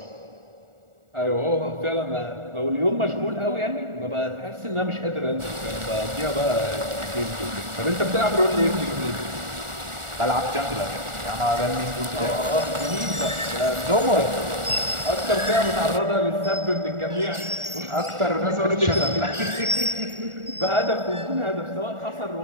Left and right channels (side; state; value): left; late; 1.4 ms